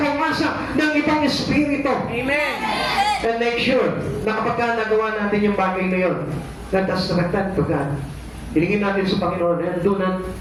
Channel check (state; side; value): identical; both; correlation 1.00